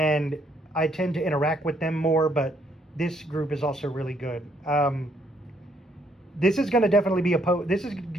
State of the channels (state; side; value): normal; both; correlation 0.70